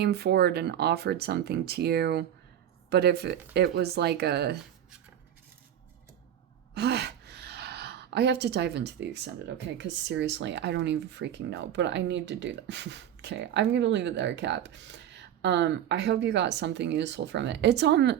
forward and offered something to you, but if it was like a I have to dive into the extended, okay? Because seriously, I don't even freaking know, but I need to do that. Okay, I'm gonna leave it there, Cap. I hope you got something useful from it.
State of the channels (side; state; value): left; quieter; 10.5 dB